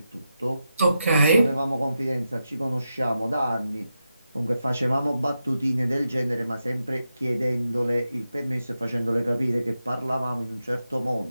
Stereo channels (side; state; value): both; inverted; correlation -0.88